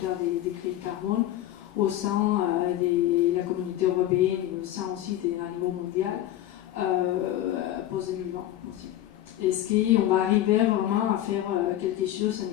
des crédits carbone au sein de la communauté européenne et au sein aussi d'un niveau mondial post-2020 aussi. Est-ce qu'on va arriver vraiment à faire quelque chose à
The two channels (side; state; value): right; quieter; 13.3 dB